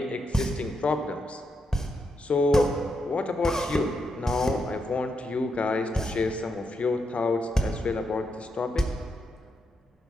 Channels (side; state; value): both; normal; correlation 0.82